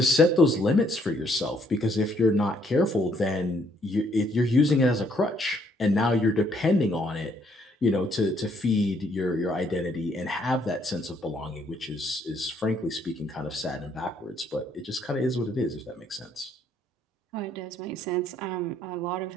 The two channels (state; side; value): normal; both; correlation 0.68